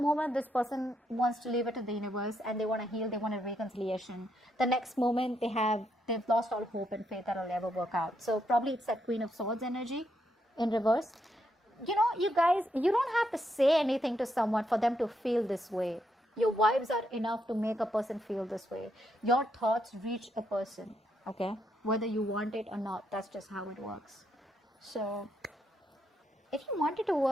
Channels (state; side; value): normal; both; correlation 0.78